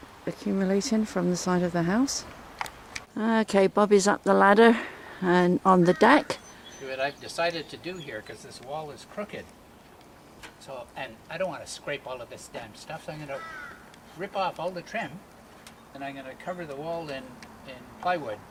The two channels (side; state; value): both; identical; correlation 1.00